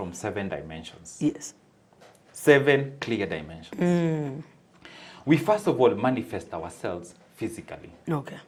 7 dimensions. Yes. 7 clear dimensions. We first of all manifest ourselves physically. Okay.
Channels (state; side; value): identical; both; correlation 1.00